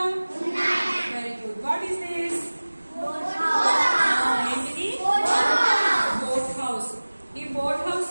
Very good. What is this? ఏంటిది? Boat house. ఈ బోట్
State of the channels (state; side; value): inverted; both; correlation -1.00